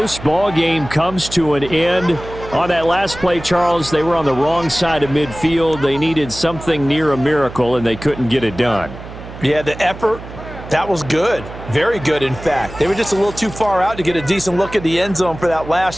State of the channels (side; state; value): right; noise; hum, 13 dB below the sound